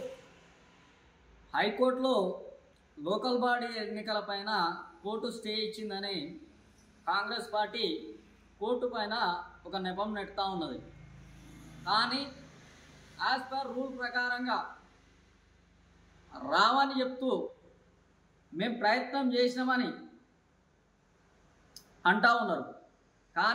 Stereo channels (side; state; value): both; identical; correlation 1.00